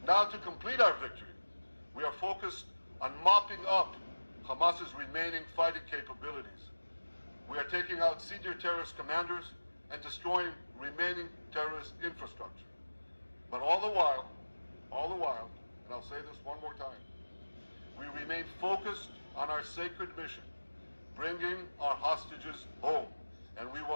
Now, to complete our victory, we are focused on mopping up Hamas's remaining fighting capabilities. We are taking out senior terrorist commanders and destroying remaining terrorist infrastructure. But all the while, and I'll say this one more time, we remain focused on our sacred mission, bringing our hostages home. And we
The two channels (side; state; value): both; inverted; correlation -1.00